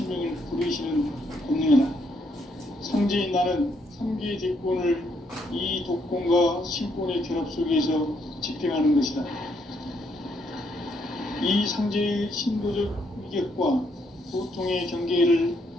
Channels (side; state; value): both; normal; correlation 0.73